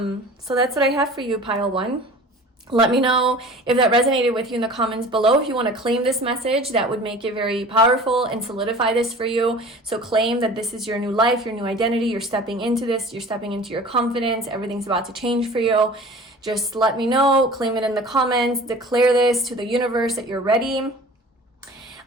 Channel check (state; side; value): normal; both; correlation 0.42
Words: that's what I have for you, pile one. Let me know if that resonated with you in the comments below. If you want to claim this message, that would make it very powerful and solidify this for you. So claim that this is your new life, your new identity. You're stepping into this. You're stepping into your confidence. Everything's about to change for you. Just let me know. Claim it in the comments. Declare this to the universe that you're ready.